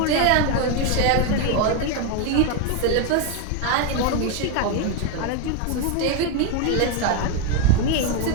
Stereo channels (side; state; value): both; different; correlation 0.01